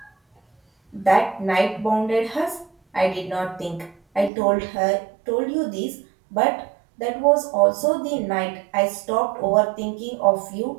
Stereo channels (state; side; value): drops out; left; at 4.3 s